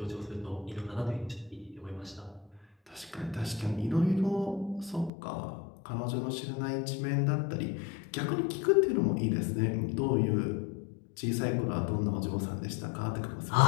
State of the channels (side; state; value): right; drops out; at 5.1 s